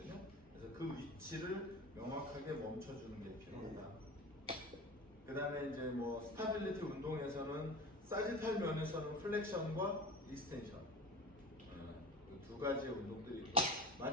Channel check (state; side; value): normal; both; correlation 0.34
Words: 그래서 그 위치를 명확하게 멈춰주는 게 필요하다. 그 다음에 이제 뭐 스타빌리티 운동에서는 사지탈 면에서는 플렉션과 익스텐션 두 가지의 운동들이 있고,